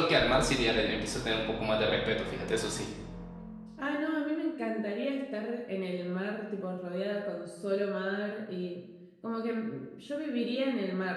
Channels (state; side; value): identical; both; correlation 1.00